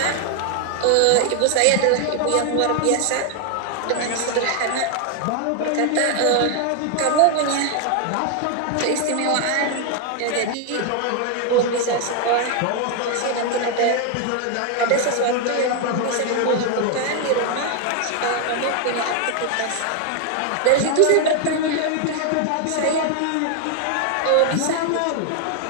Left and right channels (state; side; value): different; both; correlation 0.00